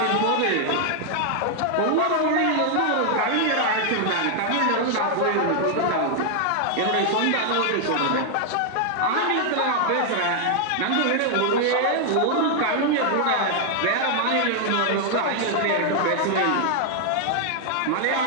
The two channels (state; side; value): different; both; correlation 0.00